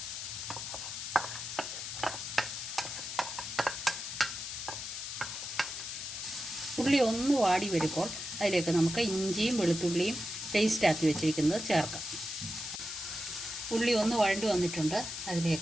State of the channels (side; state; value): left; noise; hiss, 6 dB below the sound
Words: ഉള്ളി ഒന്ന് വാടി വരുമ്പോൾ അതിലേക്ക് നമുക്ക് ഇഞ്ചിയും വെളുത്തുള്ളിയും പേസ്റ്റ് ആക്കി വെച്ചിരിക്കുന്നത് ചേർക്കാം. ഉള്ളി ഒന്ന് വഴണ്ടി വന്നിട്ടുണ്ട്.